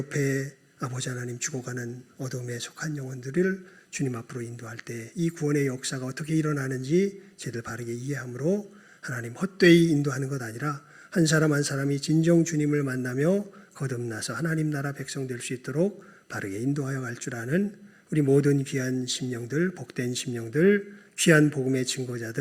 아버지 하나님 죽어가는 어둠에 속한 영혼들을 주님 앞으로 인도할 때 이 구원의 역사가 어떻게 일어나는지 제대로 바르게 이해함으로 하나님 헛되이 인도하는 것 아니라 한 사람 한 사람이 진정 주님을 만나며 거듭나서 하나님 나라 백성 될 수 있도록 바르게 인도하여 갈 줄 아는 우리 모든 귀한 심령들, 복된 심령들, 귀한 복음의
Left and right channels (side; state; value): both; identical; correlation 1.00